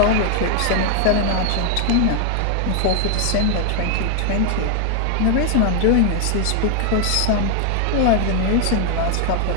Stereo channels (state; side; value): different; both; correlation 0.00